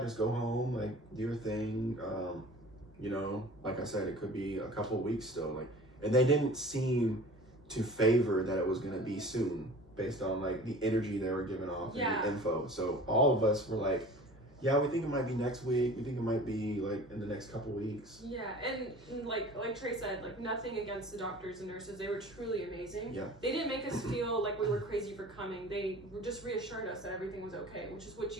just go home, like do your thing. You know, like I said, it could be a couple of weeks still. Like, and they didn't seem to favor that it was gonna be soon, based on like the energy they were giving off and the info. So all of us were like, yeah, we think it might be next week. We think it might be like in the next couple weeks. Yeah, and like Trey said, like nothing against the doctors and nurses. They were truly amazing. Yeah. They didn't make us feel like we were crazy for coming. They just reassured us that everything was okay, which is what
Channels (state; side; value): noise; right; hum, 29 dB below the sound